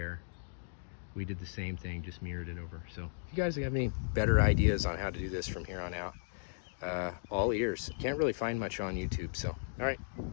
we did the same thing, just mirrored it over. So if you guys have any better ideas on how to do this from here on out, all ears. Can't really find much on YouTube, so all right,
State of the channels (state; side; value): silent; right; digital silence